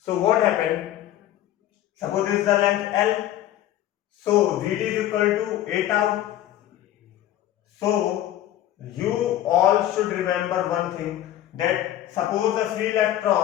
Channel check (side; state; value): right; quieter; 12.7 dB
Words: what happened? Suppose this is the length L. So Vd is equal to a tau. So you all should remember one thing, that suppose the free